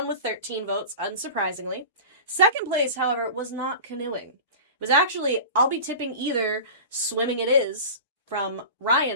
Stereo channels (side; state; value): both; inverted; correlation -0.33